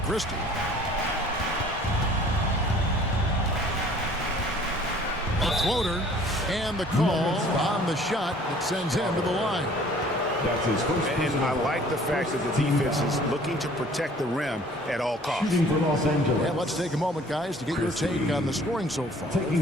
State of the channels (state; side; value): normal; both; correlation 0.53